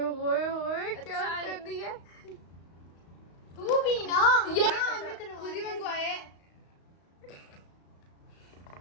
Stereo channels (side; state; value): right; late; 35 ms